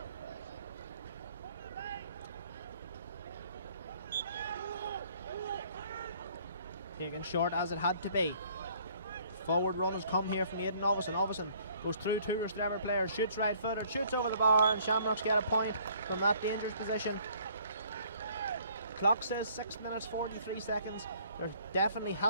Taken short as it had to be. Forward run has come here from Aidan Ovison. Ovison goes through two Rostrevor players, shoots right footed, shoots over the bar, and Shamrocks get a point from that dangerous position. Clock says 6 minutes 43 seconds. There definitely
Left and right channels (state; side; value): inverted; both; correlation -0.60